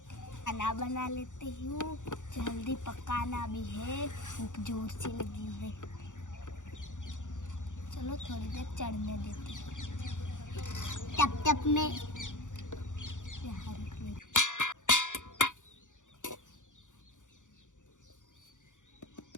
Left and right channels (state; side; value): late; right; 0.86 ms